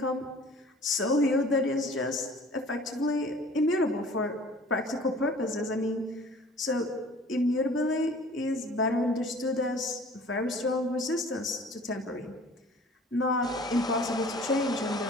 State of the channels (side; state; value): both; normal; correlation 0.48